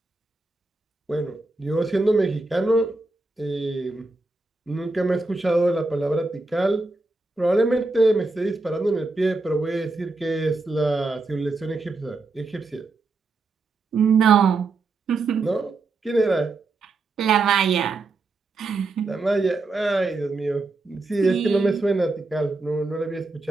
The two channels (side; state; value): left; quieter; 3.4 dB